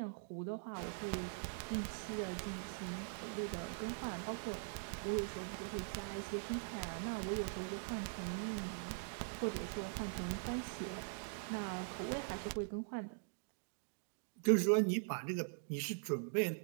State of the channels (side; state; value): left; silent; digital silence